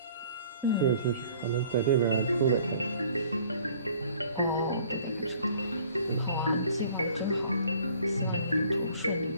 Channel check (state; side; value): inverted; both; correlation -0.55